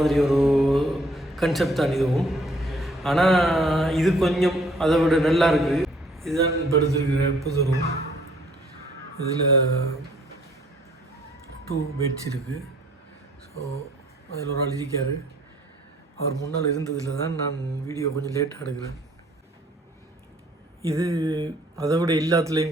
ஒரு கன்செப்ட் தான் இதுவும். ஆனால் இது கொஞ்சம் அதை விட நல்லா இருக்குது. இதுதான் இப்போ எடுத்துருக்கிற புது ரூம். இதில் 2 பெட்ஸ் இருக்குது. ஸோ அதில் ஒரு ஆள் இருக்கார். அவர் முன்னால் இருந்ததில் தான் நான் வீடியோ கொஞ்சம் லேட்டாக எடுக்கிறேன். இது அதை விட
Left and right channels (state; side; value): normal; both; correlation 0.61